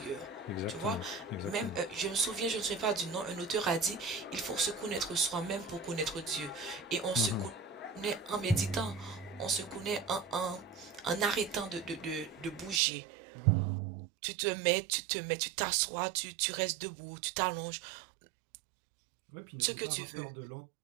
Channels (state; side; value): drops out; left; at 12.8 s